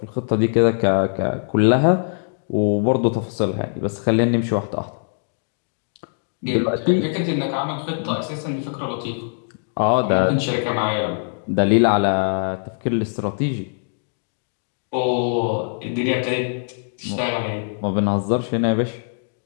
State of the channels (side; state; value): right; silent; digital silence